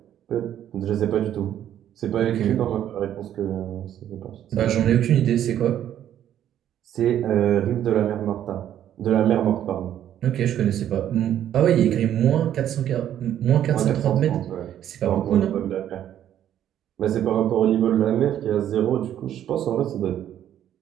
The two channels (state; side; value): quieter; left; 10.9 dB